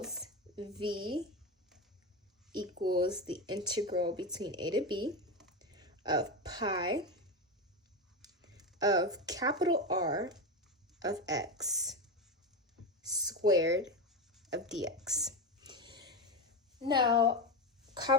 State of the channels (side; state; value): both; normal; correlation 0.16